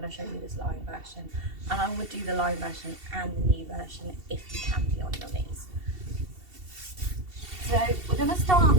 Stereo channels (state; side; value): late; left; 2.7 ms